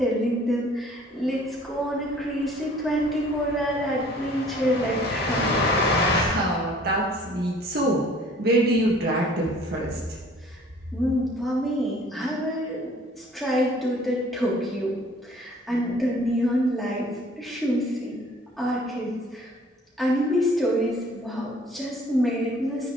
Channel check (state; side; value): normal; both; correlation 0.54